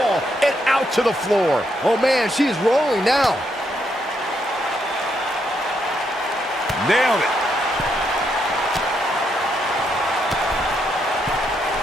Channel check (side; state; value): both; normal; correlation 0.77